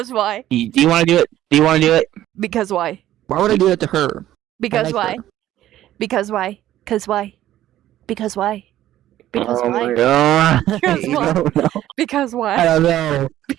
why? Do you want to do it? Do you want to do it? Because why? Why would I do that to her? Because like why? her. Because why? Because why? Because why? Because Oh why? my god. Because I why? don't know. Because I why? don't know.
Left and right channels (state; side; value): quieter; left; 13.3 dB